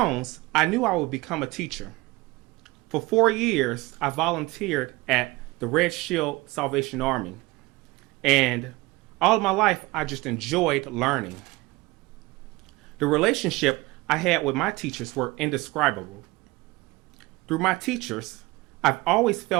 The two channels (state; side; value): quieter; left; 21.8 dB